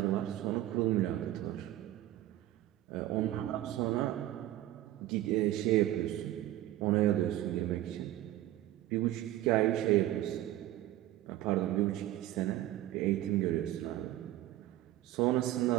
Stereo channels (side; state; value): left; quieter; 14.5 dB